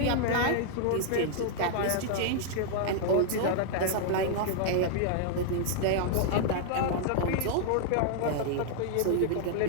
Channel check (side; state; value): both; different; correlation -0.01